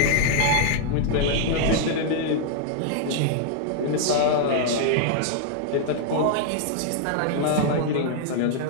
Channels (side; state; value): both; different; correlation 0.00